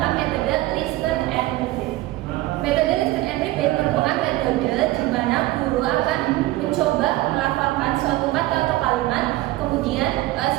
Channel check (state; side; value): quieter; left; 17.6 dB